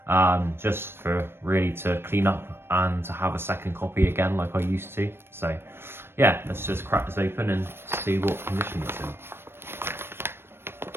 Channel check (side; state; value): left; late; 0.11 ms